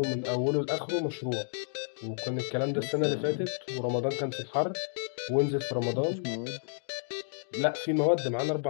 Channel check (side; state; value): right; silent; digital silence